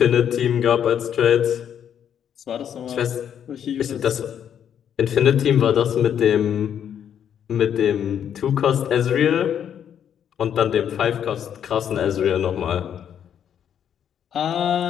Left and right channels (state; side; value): quieter; right; 9.0 dB